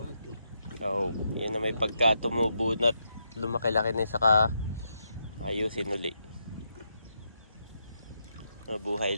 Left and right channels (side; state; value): both; inverted; correlation -0.81